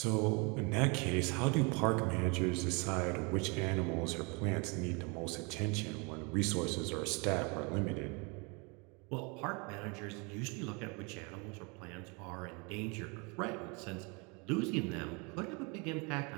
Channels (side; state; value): left; quieter; 30.9 dB